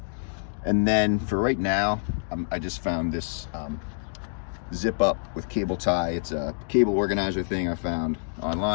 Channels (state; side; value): silent; right; digital silence